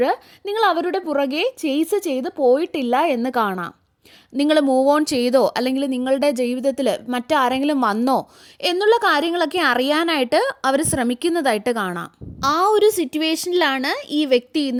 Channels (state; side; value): identical; both; correlation 1.00